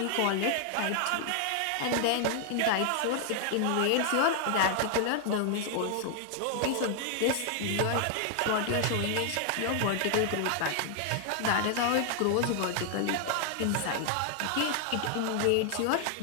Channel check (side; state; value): both; different; correlation 0.00